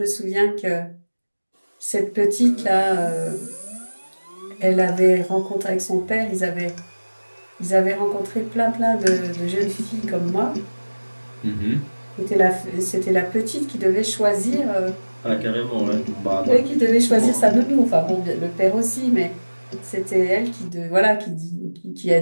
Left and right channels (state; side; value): inverted; both; correlation -1.00